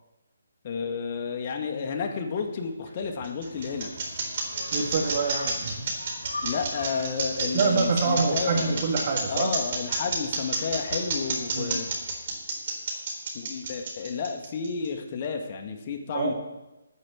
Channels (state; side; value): inverted; both; correlation -0.68